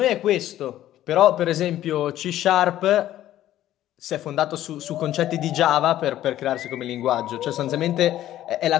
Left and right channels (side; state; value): right; quieter; 13.1 dB